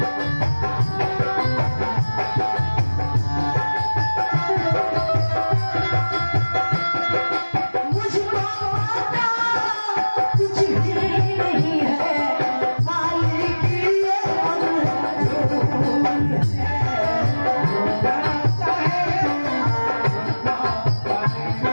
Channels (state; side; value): inverted; both; correlation -1.00